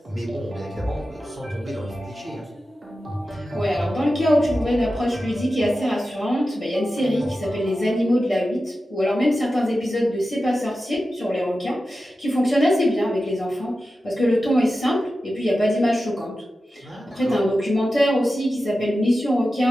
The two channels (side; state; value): both; normal; correlation 0.93